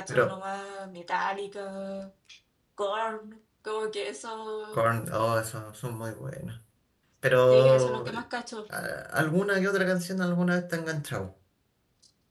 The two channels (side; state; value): both; identical; correlation 1.00